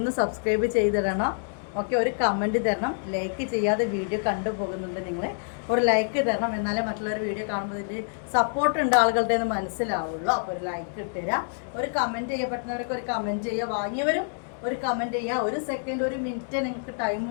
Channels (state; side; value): silent; right; digital silence